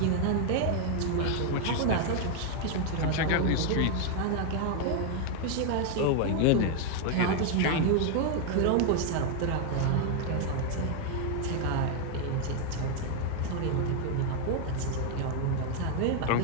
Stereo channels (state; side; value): different; both; correlation 0.00